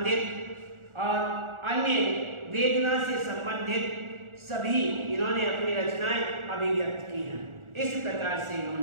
और अन्य वेदना से संबंधित सभी इन्होंने अपनी रचनाएं अभिव्यक्त की हैं। इस प्रकार से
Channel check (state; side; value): late; left; 1.4 ms